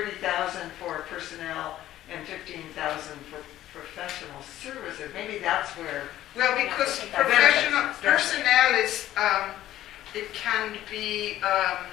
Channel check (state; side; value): quieter; right; 13.6 dB